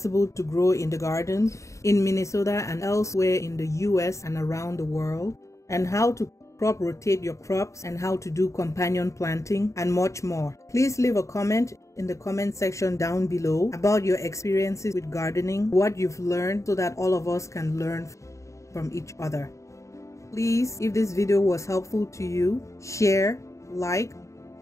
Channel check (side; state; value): right; late; 0.15 ms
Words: to grow in the garden in Minnesota and elsewhere in the US and around the world, and how to crop rotate your crops and how to do companion planting and much more. Please leave a comment in the comment section down below about your experiences with gardening, what you've learned, so that all of us can learn from each other. Please, if this video was helpful to you, share, like,